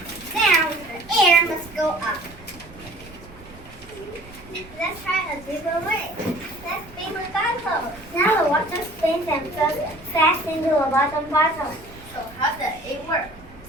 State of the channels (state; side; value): noise; right; rumble, 20 dB below the sound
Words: down, the air must go up. Let's try a different way. Let's spin the bottle. Now the water spins and flows fast into the bottom bottle. So how does it work?